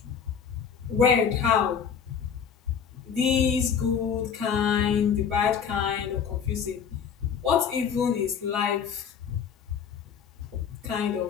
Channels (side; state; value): right; quieter; 7.3 dB